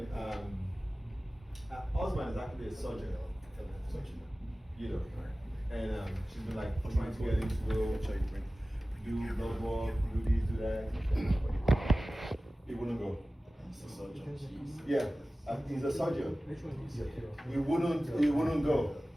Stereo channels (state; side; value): normal; both; correlation 0.96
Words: her husband is actually a surgeon, you know, and she's been like trying to get him to go do blood work, do this, do that. He wouldn't go. Yeah. He's a surgeon. He wouldn't go.